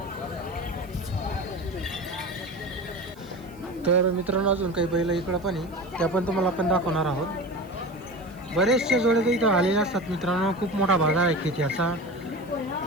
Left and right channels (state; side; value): noise; right; hiss, 28 dB below the sound